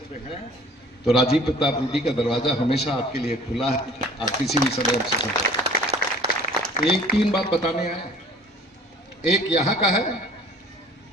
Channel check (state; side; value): normal; both; correlation 0.50